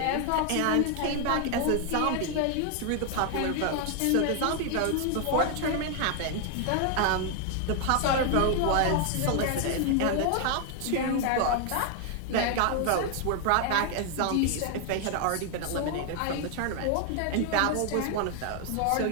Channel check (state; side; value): different; both; correlation 0.00